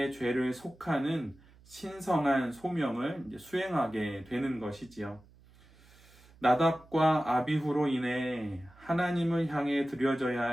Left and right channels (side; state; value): right; noise; hum, 26 dB below the sound